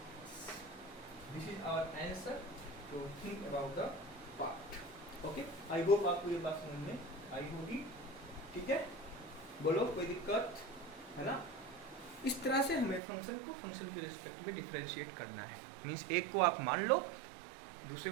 This is our answer, तो think about the part. Okay, I hope आपको ये बात समझ में आई होगी, ठीक है। बोलो कोई दिक्कत है ना। इस तरह से हमें फंक्शन को फंक्शन के रिस्पेक्ट में डिफरेंशिएट करना है। मीन्स एक को आप मान लो, दूसरे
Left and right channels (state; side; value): drops out; left; at 13.0 s